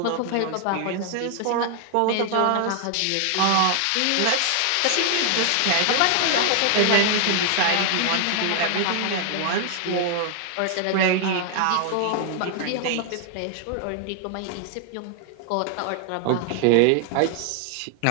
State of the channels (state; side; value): different; both; correlation 0.00